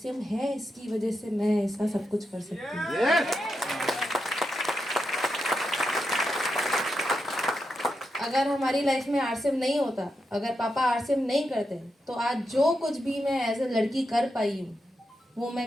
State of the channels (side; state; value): both; normal; correlation 0.86